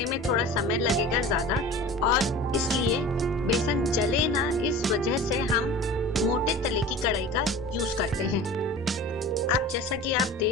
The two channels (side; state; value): both; normal; correlation 0.38